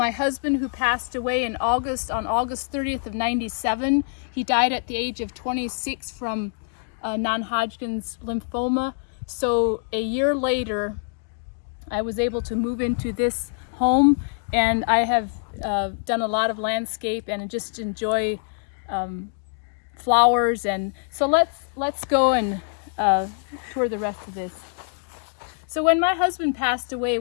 husband who passed away on August 30th of 97. He died at the age of 26 from non-Hodgkin's lymphoma. So a year later, I was able to move into this home, and I have done a lot of landscape and just enjoy flowers. And so let's go and tour the rest of this. So when my husband passed away,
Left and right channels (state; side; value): silent; right; digital silence